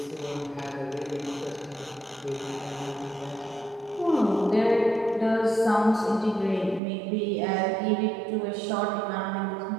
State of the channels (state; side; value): drops out; left; at 6.8 s